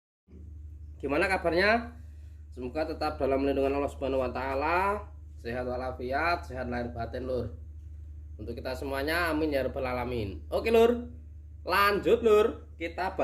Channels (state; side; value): identical; both; correlation 1.00